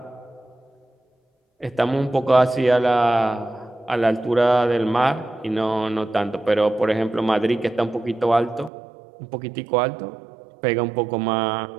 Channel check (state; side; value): drops out; left; at 8.7 s